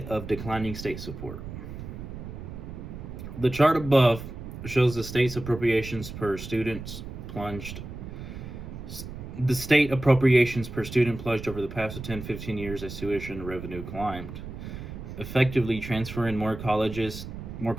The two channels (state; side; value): noise; right; rumble, 10 dB below the sound